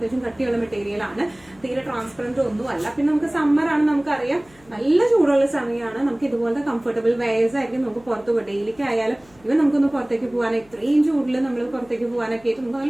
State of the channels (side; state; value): left; noise; hum, 28 dB below the sound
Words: കട്ടിയുള്ള മെറ്റീരിയൽ ആണ്, തീരെ ട്രാൻസ്പെറന്റ് ഒന്നുമല്ല. പിന്നെ നമുക്ക് സമ്മർ ആണ്, നമുക്കറിയാം നല്ല ചൂടുള്ള സമയമാണ്. നമുക്ക് ഇതുപോലത്തെ കംഫർട്ടബിൾ വെയർസ് ആയിരിക്കും നമുക്ക് പുറത്ത് പോയി ഡെയിലിക്ക് ആയാലും ഇവൻ നമുക്കൊന്ന് പുറത്തേക്ക് പോകാൻ, ഇത്രയും ചൂടിൽ നമ്മൾ പുറത്തേക്ക് പോകാനൊക്കെ ആയിട്ട് നമുക്ക്